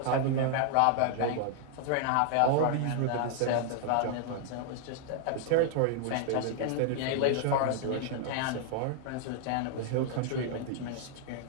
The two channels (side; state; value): both; different; correlation 0.00